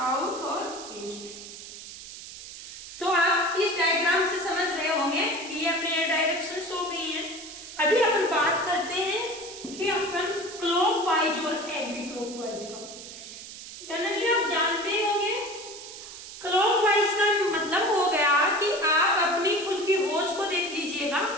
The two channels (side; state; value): right; noise; hiss, 13 dB below the sound